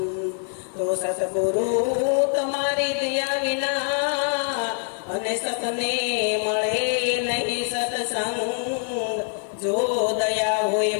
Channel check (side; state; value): right; silent; 62 dB below the other